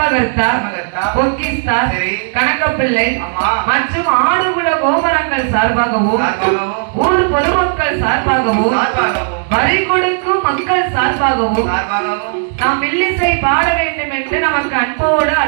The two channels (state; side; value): silent; left; digital silence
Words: பொக்கிஸ்தா கணக்கப்பிள்ளை மற்றும் ஆடுகுல கோபுரங்கள் சார்பாகவும் ஊர் பொதுமக்கள் சார்பாகவும் வரி கொடுக்கும் மக்கள் சார்பாகவும் நாம் வில்லிசை பாட வேண்டும் என்று நமக்கு அன்போடு